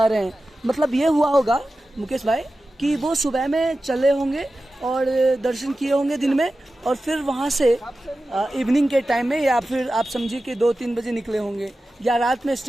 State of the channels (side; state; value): both; normal; correlation 0.94